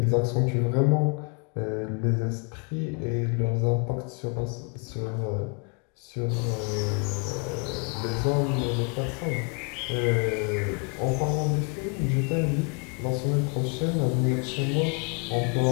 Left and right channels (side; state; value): right; quieter; 35.7 dB